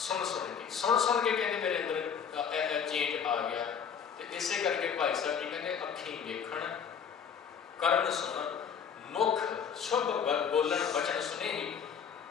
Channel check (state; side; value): quieter; right; 7.2 dB